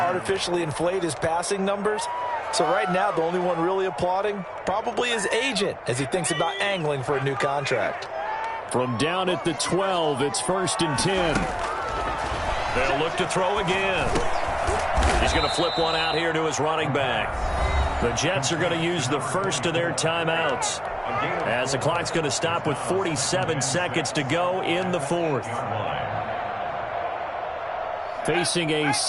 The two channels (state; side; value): identical; both; correlation 1.00